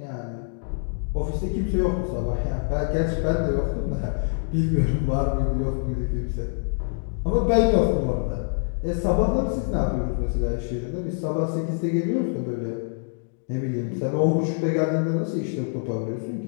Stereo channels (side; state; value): right; silent; 62 dB below the other